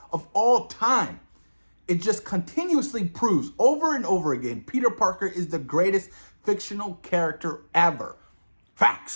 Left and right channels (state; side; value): inverted; both; correlation -1.00